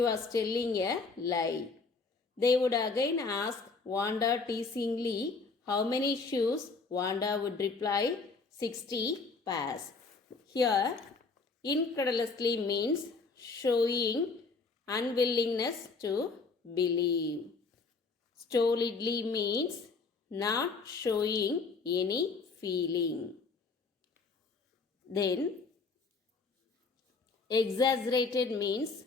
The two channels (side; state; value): right; quieter; 4.2 dB